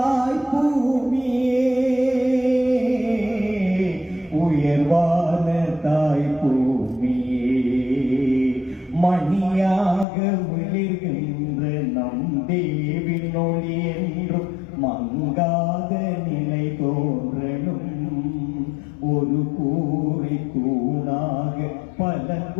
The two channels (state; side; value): drops out; right; at 10.1 s